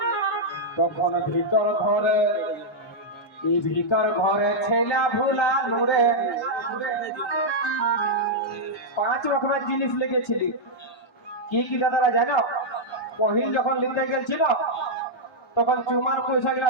তখন ভিতর ঘরে ছেলা ভুলা নুরে 5 রকমের জিনিস লিখেছিলি কি কি দাদারা জানো পহিল যখন লিখতে গেছিল তখন চুমার পয়সাগুলো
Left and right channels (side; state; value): both; normal; correlation -0.05